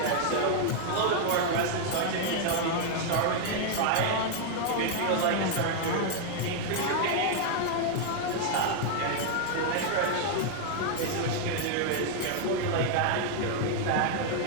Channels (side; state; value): both; different; correlation 0.00